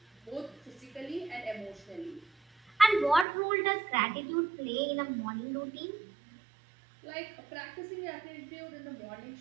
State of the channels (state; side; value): drops out; left; at 3.2 s